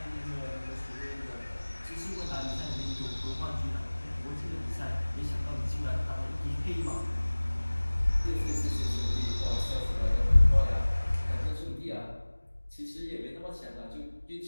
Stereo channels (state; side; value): inverted; both; correlation -1.00